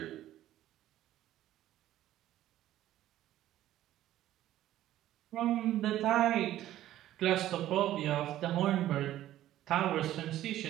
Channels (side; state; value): left; quieter; 13.4 dB